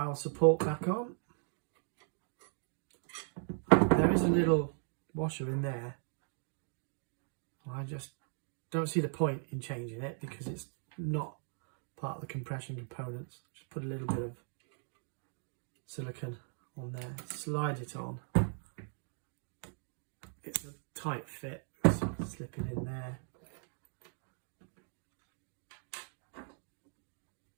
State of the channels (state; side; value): silent; left; 52 dB below the other